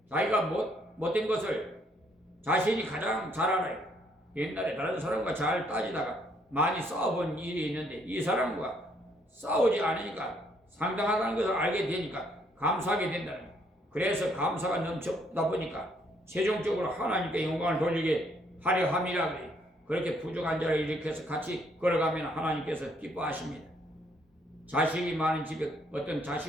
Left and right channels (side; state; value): both; normal; correlation 0.69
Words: 자기가 못된 것을 자신이 가장 잘 알아요. 옛날에 다른 사람과 잘 따지다가 많이 싸워본 일이 있는데 이 사람과 싸우지 않으니까 상당하다는 것을 알게 되니까 감사하게 된다는 거예요. 그래서 감사가 넘쳐다 보니까 최종적으로 하나님께 영광을 돌리게 하려 함이라 그래요. 그렇게 부족한 자를 일으켜서 같이 걸어가면 하나님께서 기뻐하십니다. 자식이 많은 집에 어떤